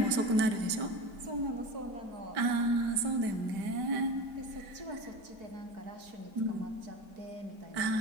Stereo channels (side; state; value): left; late; 5.0 ms